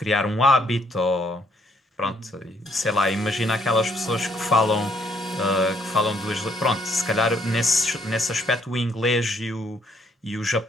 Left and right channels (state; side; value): normal; both; correlation 0.69